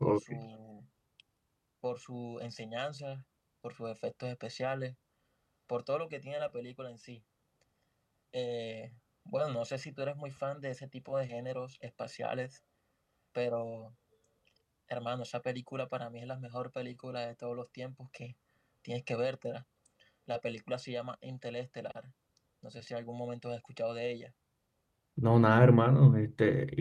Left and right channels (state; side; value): identical; both; correlation 1.00